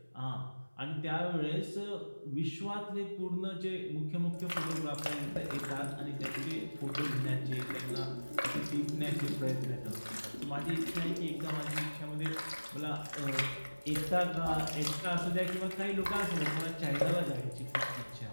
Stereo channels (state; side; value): inverted; both; correlation -1.00